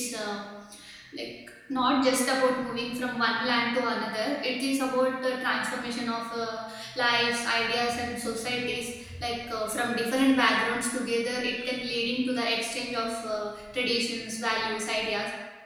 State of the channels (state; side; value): identical; both; correlation 1.00